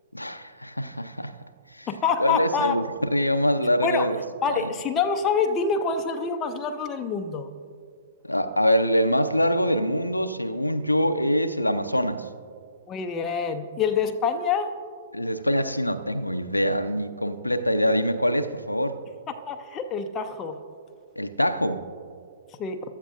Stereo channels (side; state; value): both; inverted; correlation -0.60